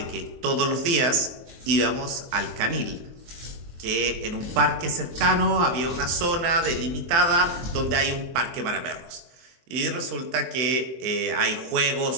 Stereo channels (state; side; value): late; left; 23 ms